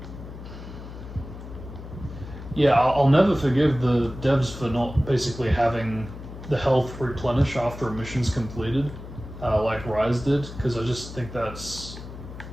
Yeah, I'll never forgive the devs for not basically having the health replenish after a mission's completed, like Rise did, because I just think that's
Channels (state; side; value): noise; left; hum, 12 dB below the sound